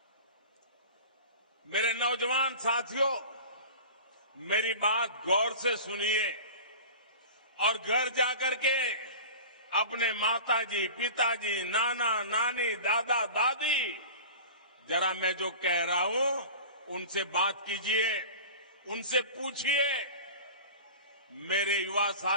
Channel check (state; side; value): inverted; both; correlation -0.36